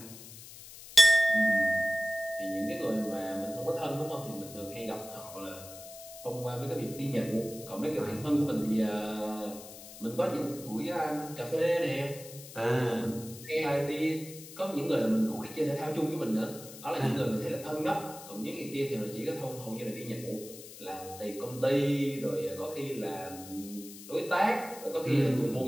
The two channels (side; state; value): left; noise; hiss, 15 dB below the sound